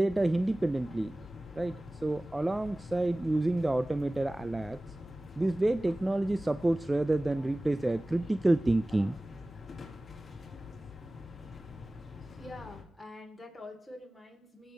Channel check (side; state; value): both; normal; correlation 0.98